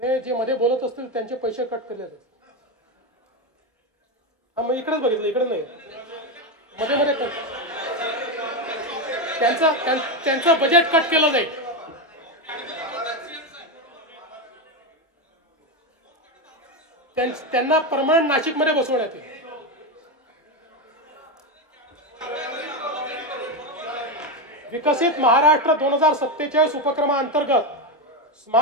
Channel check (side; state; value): both; normal; correlation 0.11